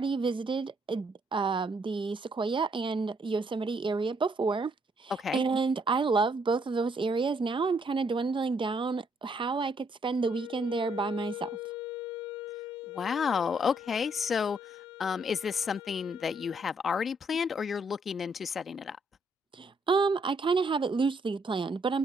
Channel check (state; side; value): normal; both; correlation 0.70